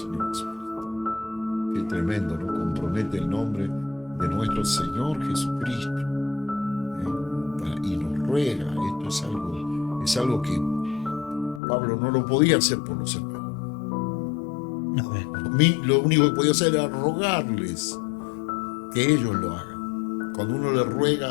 Jesucristo. Qué tremendo, ¿no? Compromete el nombre de nuestro Señor Jesucristo. Y nos ruega. Esto es algo que Pablo no lo podía hacer por los hermanos. Lo único que podía hacer era rogarles que ellos lo hagan. Cuando uno le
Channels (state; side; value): drops out; right; at 11.6 s